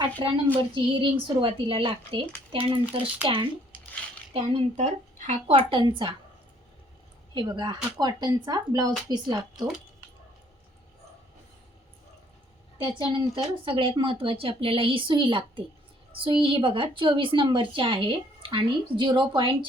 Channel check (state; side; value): normal; both; correlation 0.63